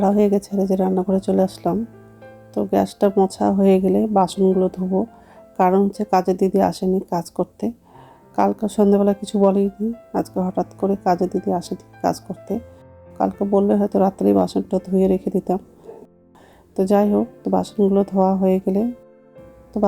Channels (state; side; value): identical; both; correlation 1.00